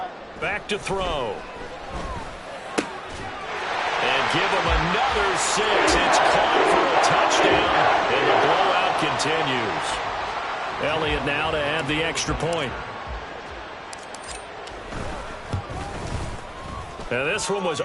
Back to throw. And give him another 6. It's caught for a touchdown, and the blowout continues. Elliott now to add the extra point. Now this one was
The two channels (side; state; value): both; identical; correlation 1.00